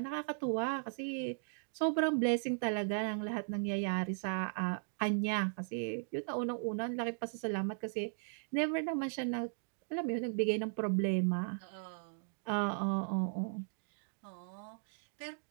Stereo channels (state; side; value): silent; left; digital silence